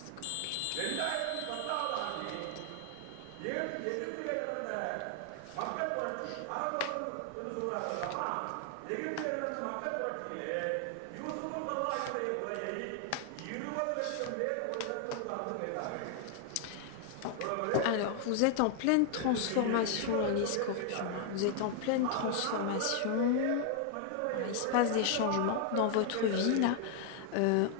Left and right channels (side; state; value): both; different; correlation 0.00